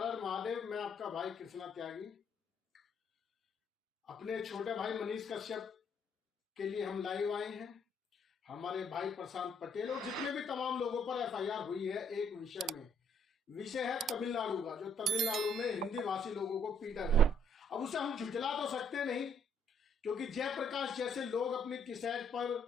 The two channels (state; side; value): normal; both; correlation 0.67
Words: हर महादेव। मैं आपका भाई कृष्णा त्यागी। अपने छोटे भाई मनीष कश्यप के लिए हम लाइव आए हैं। हमारे भाई प्रशांत पटेल और जितने भी तमाम लोगों पर एफआईआर हुई है एक विषय में। विषय है तमिलनाडु का, जो तमिलनाडु में हिंदी भाषी लोगों को पीटा गया। अब उसे हम झुठला तो सकते नहीं, क्योंकि जयप्रकाश जैसे लोग अपनी टिशर्ट पर,